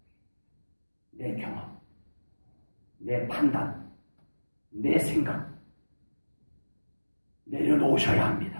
내 경험, 내 판단, 내 생각 내려놓으셔야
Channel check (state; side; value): inverted; both; correlation -1.00